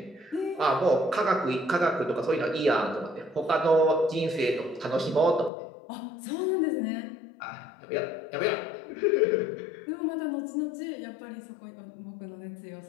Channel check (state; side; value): drops out; right; at 5.5 s